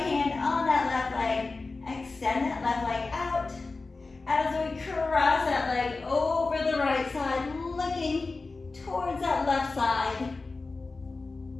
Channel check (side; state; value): right; quieter; 3.7 dB